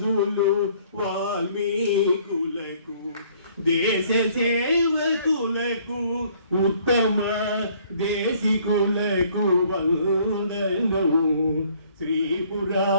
వాల్మీకులకు, దేశ సేవకులకు, ఉత్తమ దేశికులకు వందనం, శ్రీ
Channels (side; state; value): both; inverted; correlation -0.60